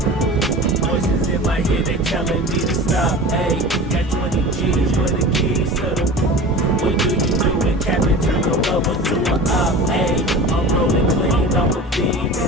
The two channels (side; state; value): both; normal; correlation 0.35